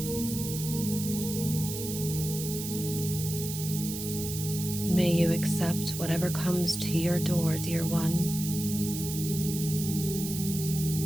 May you accept whatever comes to your door, dear one.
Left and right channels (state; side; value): noise; right; hiss, 7 dB below the sound